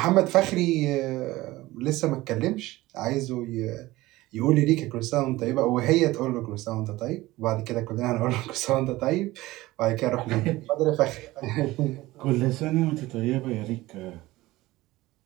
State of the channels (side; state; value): left; quieter; 18.4 dB